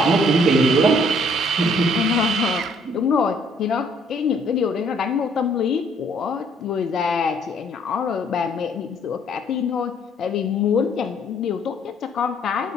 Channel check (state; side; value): normal; both; correlation 0.63